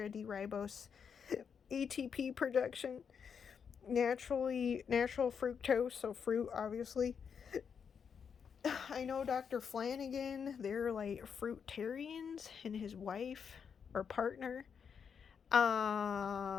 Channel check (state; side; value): quieter; right; 6.8 dB